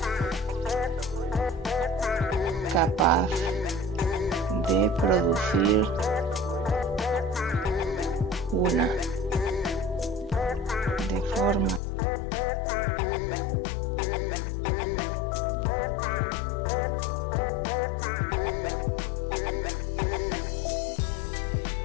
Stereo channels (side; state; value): right; drops out; at 11.8 s